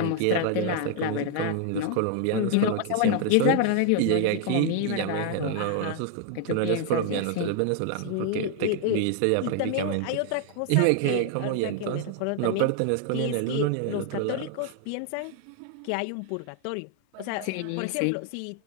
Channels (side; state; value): both; different; correlation 0.00